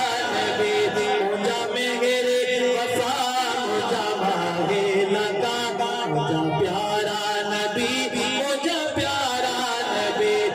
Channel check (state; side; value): identical; both; correlation 1.00